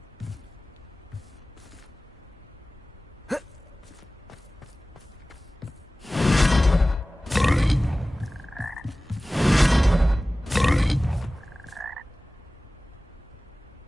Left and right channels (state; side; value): normal; both; correlation 0.97